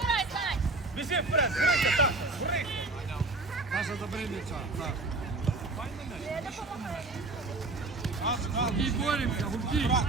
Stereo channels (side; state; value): left; quieter; 3.2 dB